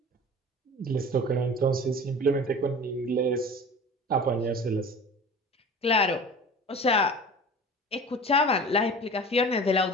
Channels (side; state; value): both; normal; correlation 0.39